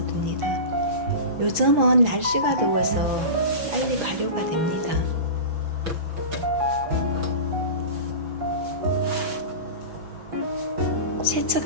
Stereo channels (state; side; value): late; left; 6.1 ms